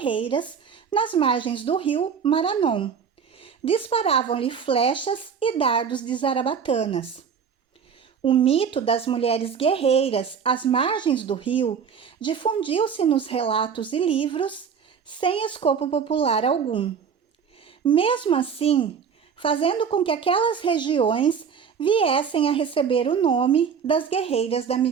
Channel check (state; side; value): quieter; left; 6.8 dB